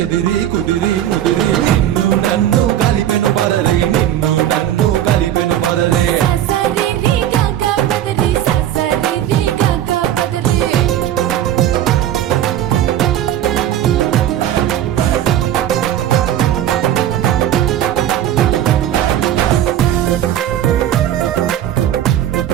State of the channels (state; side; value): quieter; left; 11.6 dB